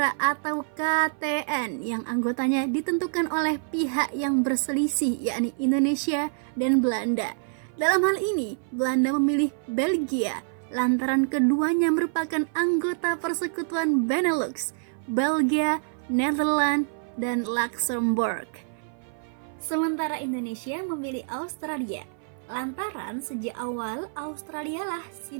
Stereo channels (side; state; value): left; silent; 57 dB below the other